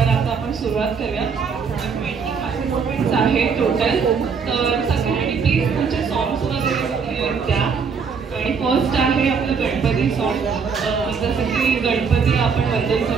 आता आपण सुरुवात करूया. 20 पार्टिसिपेंट्स आहे टोटल. तर सगळ्यांनी प्लीज तुमचे सॉंग्स वगैरे द्या. आणि फर्स्ट आहे आपलं गणपती सॉन्ग. जसं की गणपती आपण वंदन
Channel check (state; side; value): quieter; left; 5.8 dB